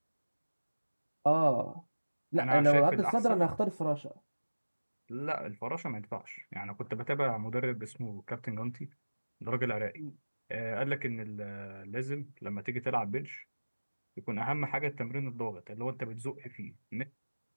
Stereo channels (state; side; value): inverted; both; correlation -1.00